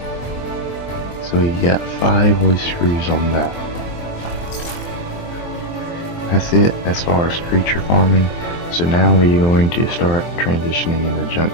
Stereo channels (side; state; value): right; late; 23 ms